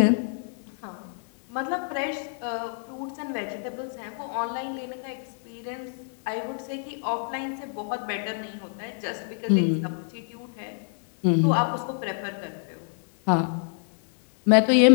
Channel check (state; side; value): silent; right; 59 dB below the other